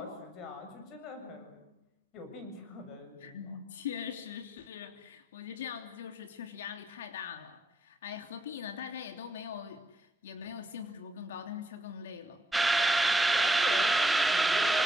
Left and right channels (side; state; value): both; normal; correlation 0.79